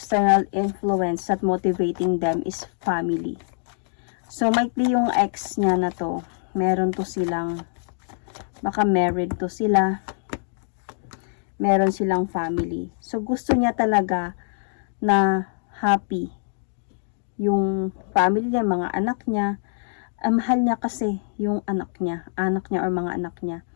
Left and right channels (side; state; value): right; silent; 62 dB below the other